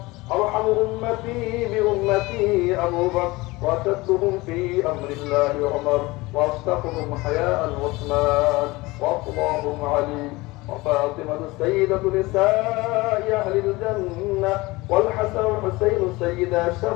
أرحم أمتي بأمتي أبو بكر، وأشدهم في أمر الله عمر، وأصدقهم حياء عثمان، وأفضلهم علي، وفاطمة سيدة نساء أهل الجنة، والحسن والحسين سيدا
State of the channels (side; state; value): right; quieter; 21.6 dB